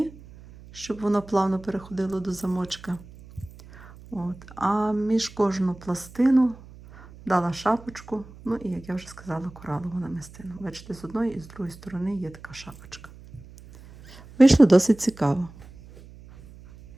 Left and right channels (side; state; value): right; noise; hum, 20 dB below the sound